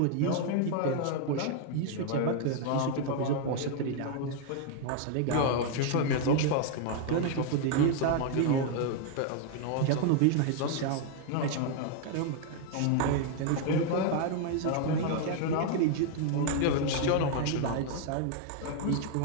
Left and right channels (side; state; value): both; different; correlation 0.00